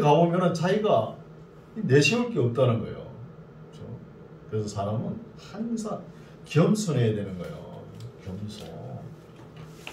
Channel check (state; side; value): identical; both; correlation 1.00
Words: 자기가 내세울 게 없다는 거예요. 그렇죠? 그래서 사람은 항상 겸손해야 되는 거예요. 겸손.